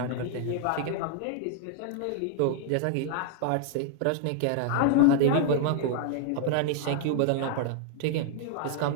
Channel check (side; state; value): both; different; correlation 0.00